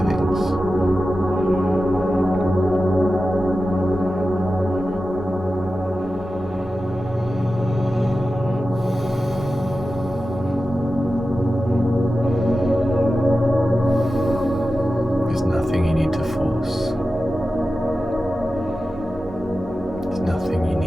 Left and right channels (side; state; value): both; normal; correlation 0.93